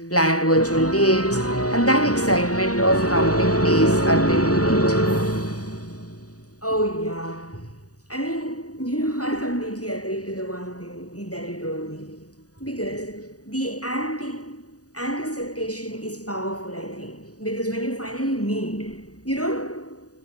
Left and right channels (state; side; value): late; right; 0.67 ms